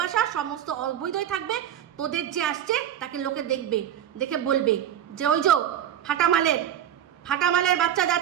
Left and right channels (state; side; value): quieter; left; 10.4 dB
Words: সমস্ত অবৈধই থাকবে। তোদের যে আসছে তাকে লোকে দেখে বলবে যে ওই যে ফাটামালের বাচ্চা